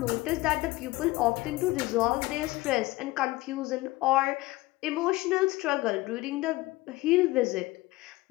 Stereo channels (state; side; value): quieter; right; 19.7 dB